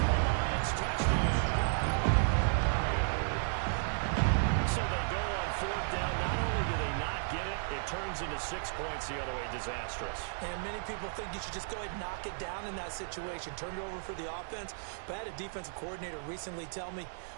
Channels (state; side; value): silent; left; digital silence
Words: the Lions. Touchdown. So they go on 4th down. Not only do they not get it, it turns into 6 points the other way. Disastrous. And many people think you should just go ahead and knock it down in that situation. Turn it over for the offense. But I had a defensive coordinator recently tell me,